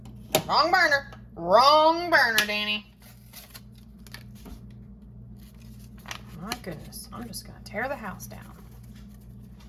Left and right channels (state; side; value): identical; both; correlation 1.00